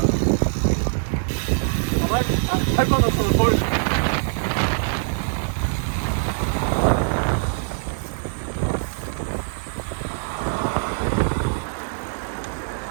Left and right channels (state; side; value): silent; left; digital silence